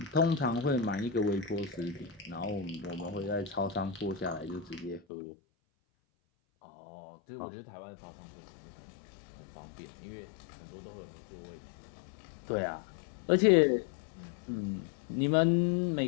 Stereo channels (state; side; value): drops out; right; at 5.0 s